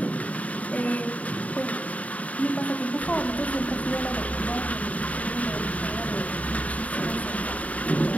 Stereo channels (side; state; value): right; late; 0.069 ms